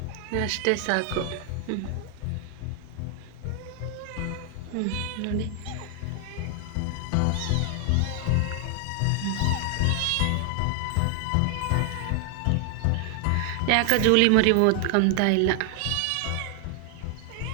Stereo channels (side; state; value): both; different; correlation 0.00